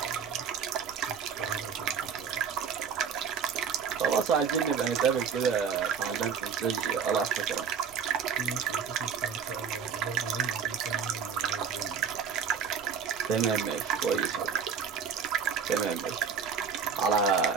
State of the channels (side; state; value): left; quieter; 6.8 dB